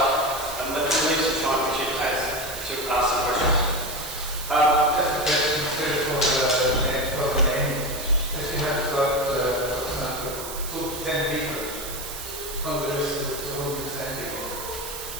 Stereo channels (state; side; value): noise; right; hiss, 9 dB below the sound